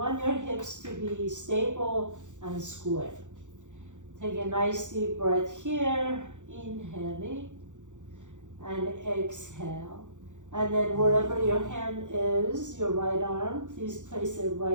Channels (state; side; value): late; left; 0.85 ms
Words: your hips to be stable and square. Take a nice deep breath here, inhaling. And exhale. And then wherever your hand is, your right arm, please place it